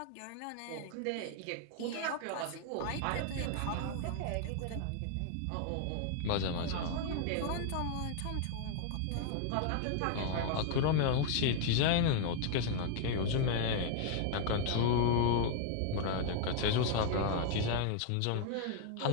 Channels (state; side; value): different; both; correlation 0.00